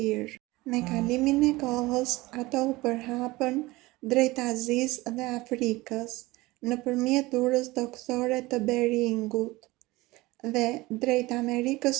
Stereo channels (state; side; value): quieter; left; 20.4 dB